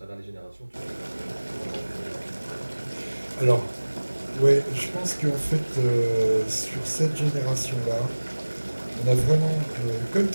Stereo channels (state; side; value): inverted; both; correlation -1.00